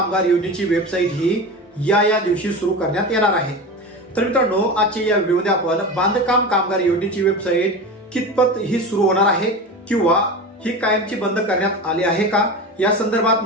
योजनेची वेबसाईट ही या दिवशी सुरू करण्यात येणार आहे। तर मित्रांनो आजच्या या व्हिडिओमध्ये आपण बांधकाम कामगार योजनेची वेबसाईट कितपत ही सुरू होणार आहे किंवा ही कायमची बंद करण्यात आली आहे का या संदर्भात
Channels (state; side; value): normal; both; correlation 0.27